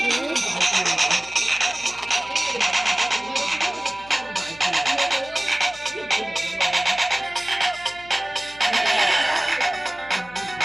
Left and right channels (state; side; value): noise; left; hum, 23 dB below the sound